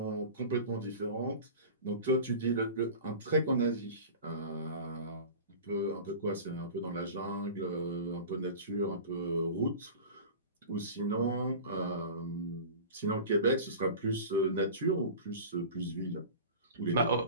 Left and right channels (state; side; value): inverted; both; correlation -0.36